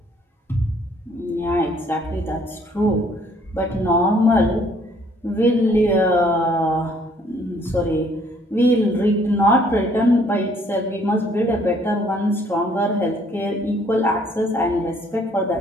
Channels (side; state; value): both; normal; correlation 0.62